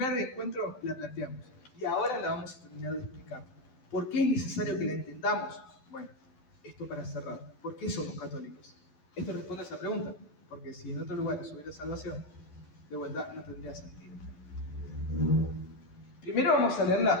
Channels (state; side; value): late; right; 12 ms